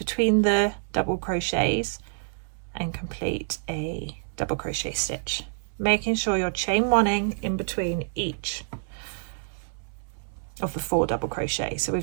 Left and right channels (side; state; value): left; silent; 60 dB below the other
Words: the double crochets and complete a double crochet stitch, making sure you're chain 1ing in between each of the 4 double crochets. So